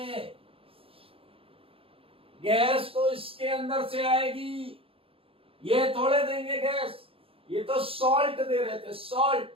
गैस तो इसके अंदर से आएगी, ये थोड़े देंगे गैस, ये तो सॉल्ट दे रहे थे, सॉल्ट।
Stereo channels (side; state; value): left; late; 0.27 ms